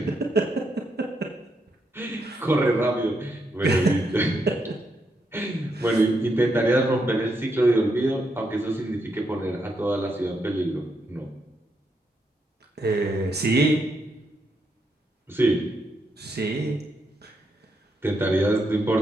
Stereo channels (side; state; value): both; normal; correlation 0.80